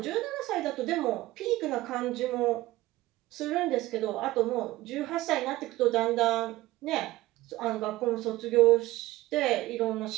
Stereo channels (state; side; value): quieter; left; 17.6 dB